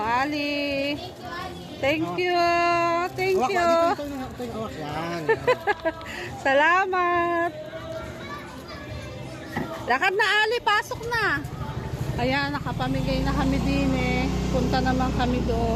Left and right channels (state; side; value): identical; both; correlation 1.00